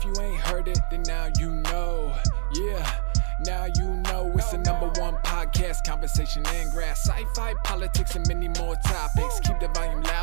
you ain't heard it, then now you know. Yeah, now you know. It's the #1 podcast, conversation and grass, sci-fi, politics, and many more topics. Keep the volume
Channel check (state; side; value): silent; left; 62 dB below the other